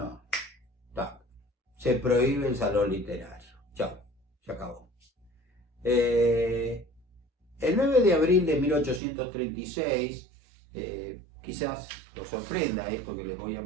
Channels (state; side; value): drops out; left; at 9.0 s